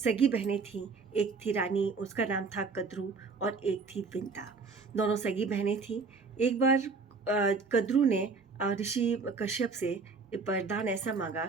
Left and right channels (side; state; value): left; quieter; 4.4 dB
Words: बहनें थीं। एक थी रानी, उसका नाम था कद्रू, और एक थी विंता। दोनों सगी बहनें थीं। एक बार कद्रू ने ऋषि कश्यप से वरदान ऐसा मांगा